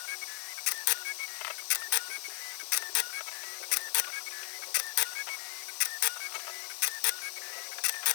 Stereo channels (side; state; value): right; silent; 54 dB below the other